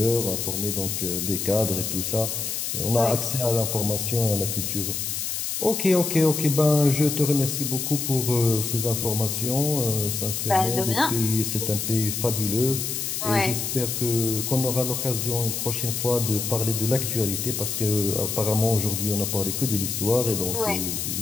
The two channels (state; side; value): noise; left; hiss, 3 dB below the sound